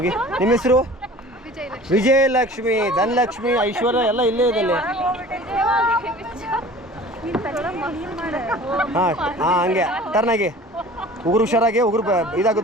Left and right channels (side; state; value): both; normal; correlation 0.44